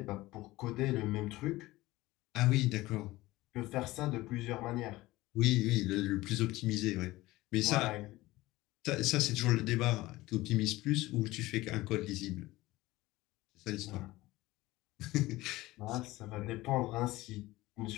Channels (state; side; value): quieter; right; 18.6 dB